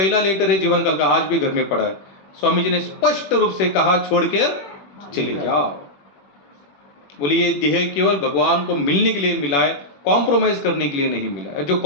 लेटर है जीवन काल का, आज भी घर में पड़ा है. स्वामी जी ने स्पष्ट रूप से कहा छोड़ के चले जाओ. बोले ये देह केवल भगवान को मिलने के लिए मिला है, कॉम्प्रोमाइज करने के लिए नहीं मिला है. जो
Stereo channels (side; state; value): right; late; 21 ms